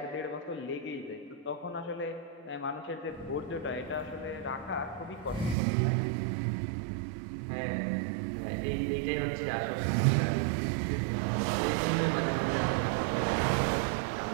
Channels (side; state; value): left; drops out; at 5.6 s